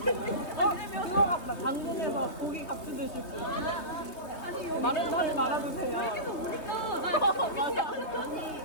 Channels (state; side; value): late; right; 3.2 ms